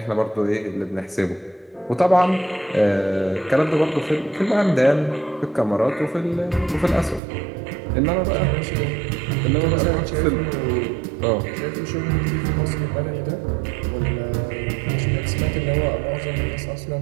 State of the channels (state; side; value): drops out; left; at 7.2 s